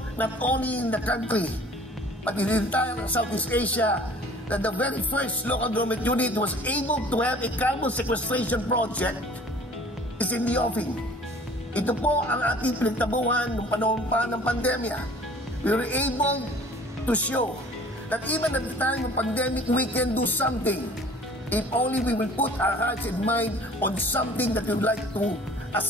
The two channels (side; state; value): both; normal; correlation 0.49